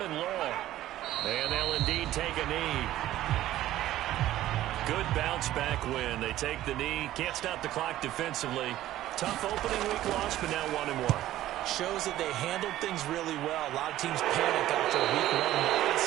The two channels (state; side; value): quieter; left; 14.1 dB